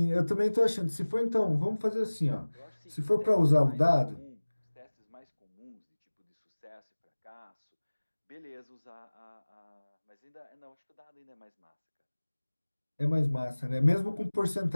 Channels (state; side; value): inverted; both; correlation -1.00